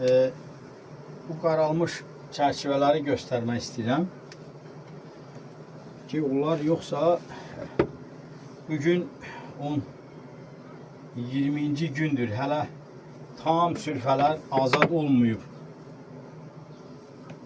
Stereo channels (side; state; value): both; identical; correlation 1.00